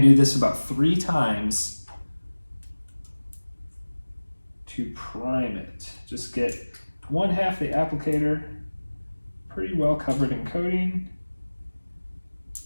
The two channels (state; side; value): inverted; both; correlation -1.00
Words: to do this about 3 times to prime it. Just get 1/2 the applicator pretty well covered in coating.